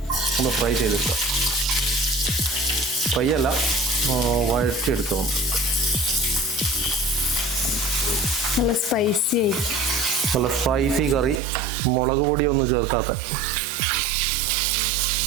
ഒന്ന് ഫ്രൈ ചെയ്തെടുക്കുക. ഫ്രൈ അല്ല, വഴറ്റിയെടുക്കുക. നല്ല സ്പൈസി ആയിരിക്കും. നല്ല സ്പൈസി കറി, മുളക് പൊടിയൊന്നും ചേർക്കാത്ത.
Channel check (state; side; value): drops out; left; at 11.4 s